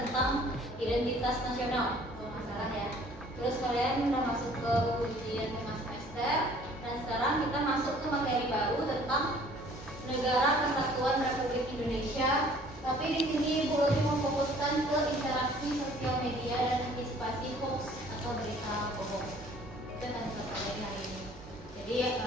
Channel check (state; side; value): normal; both; correlation 0.54